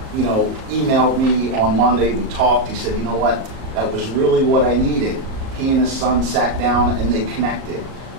you know, emailed me on Monday. We talked. He said, you know what, that was really what I needed. He and his son sat down and they connected.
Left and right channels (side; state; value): left; late; 38 ms